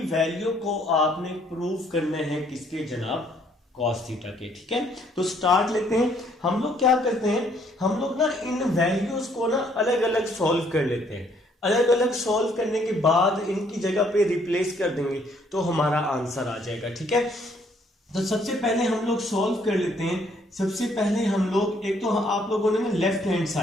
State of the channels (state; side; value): normal; both; correlation 0.65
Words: वैल्यू को आपने प्रूव करना है किसके जनाब, कॉस थीटा के। ठीक है, तो स्टार्ट लेते हैं। हम लोग क्या करते हैं, हम लोग ना इन वैल्यूज को ना अलग अलग सॉल्व कर लेते हैं। अलग अलग सॉल्व करने के बाद इनकी जगह पे रिप्लेस कर देंगे तो हमारा आंसर आ जाएगा। ठीक है, तो सबसे पहले हम लोग सॉल्व कर लेते हैं। सबसे पहले हम लोग, एक तो आप लोगों ने ना लेफ्ट हैंड